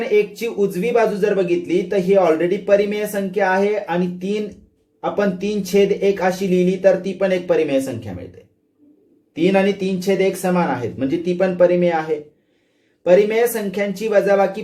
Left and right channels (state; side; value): identical; both; correlation 1.00